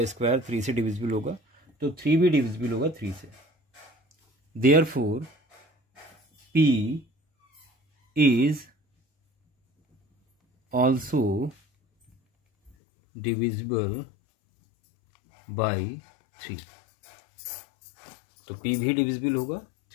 स्क्वायर 3 से डिविजिबल होगा, तो 3 भी डिविजिबल होगा 3 से। Therefore P is also divisible by 3, तो P भी डिविजिबल होगा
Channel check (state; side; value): drops out; right; at 12.7 s